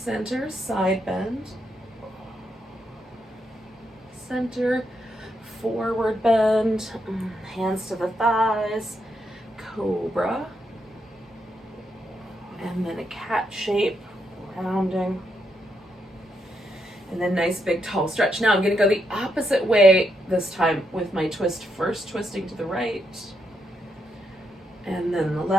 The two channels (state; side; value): normal; both; correlation 0.80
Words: side bend. Center, forward bend. Hands to the thighs. Cobra. And then a cat shape, rounding. And then nice big tall stretch. Now I'm going to go the opposite way this time with my twist. First twisting to the right. And then the